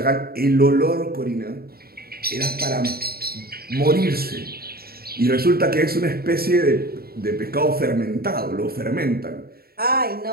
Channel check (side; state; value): left; late; 0.44 ms